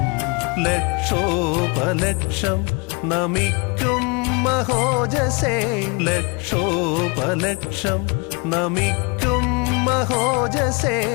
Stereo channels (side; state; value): right; quieter; 30.2 dB